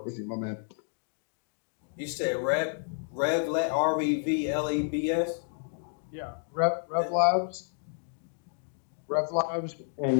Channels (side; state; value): right; silent; 57 dB below the other